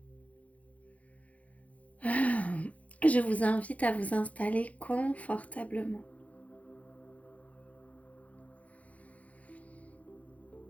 Je vous invite à vous installer confortablement.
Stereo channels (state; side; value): late; right; 0.068 ms